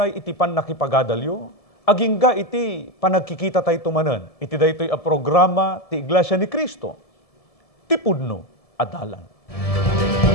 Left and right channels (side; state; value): right; late; 1.7 ms